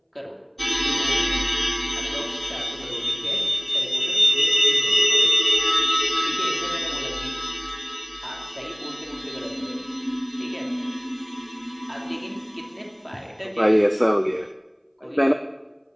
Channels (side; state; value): both; identical; correlation 1.00